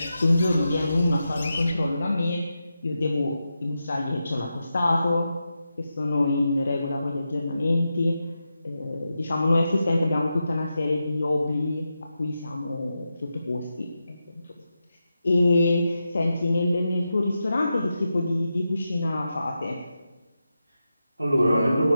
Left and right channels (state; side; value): inverted; both; correlation -0.89